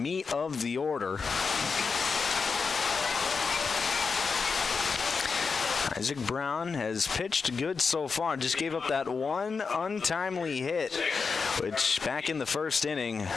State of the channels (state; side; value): quieter; right; 5.1 dB